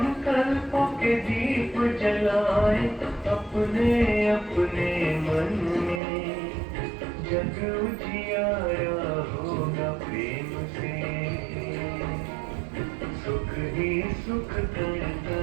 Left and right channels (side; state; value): left; drops out; at 6.0 s